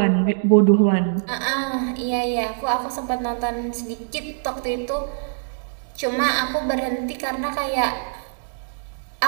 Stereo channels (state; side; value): silent; left; digital silence